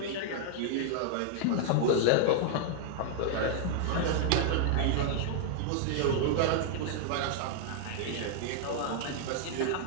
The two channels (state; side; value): different; both; correlation -0.01